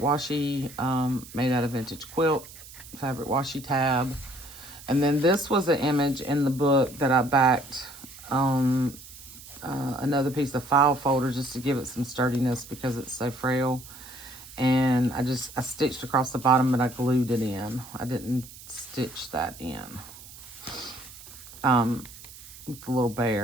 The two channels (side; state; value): right; noise; hiss, 17 dB below the sound